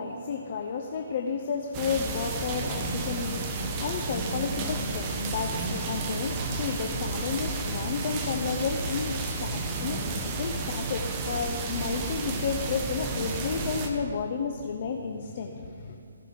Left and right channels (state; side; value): inverted; both; correlation -0.54